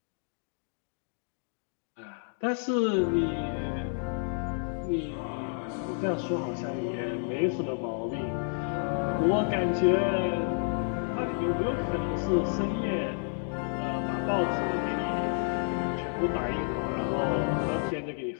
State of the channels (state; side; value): silent; right; 58 dB below the other